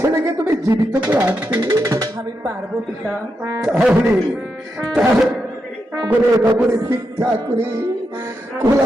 তুমি জীবিত করে আনতে? আমি পারবো পিতা। তাহলে নগরে নগরে ভিক্ষা করে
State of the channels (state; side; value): normal; both; correlation 0.85